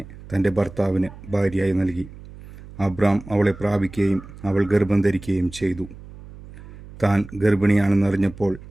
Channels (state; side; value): noise; right; hum, 17 dB below the sound